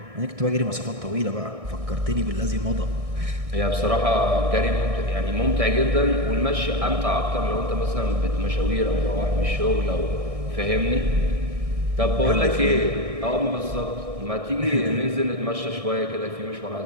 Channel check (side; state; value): left; late; 1.6 ms